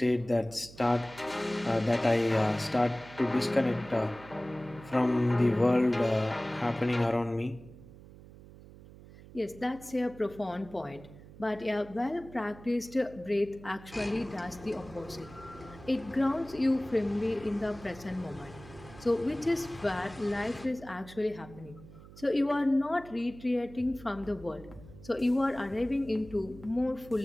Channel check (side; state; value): right; noise; hum, 19 dB below the sound